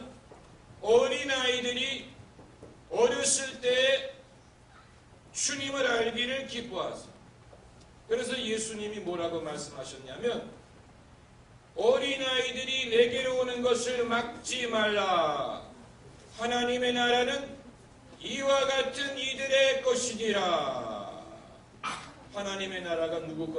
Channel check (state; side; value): identical; both; correlation 1.00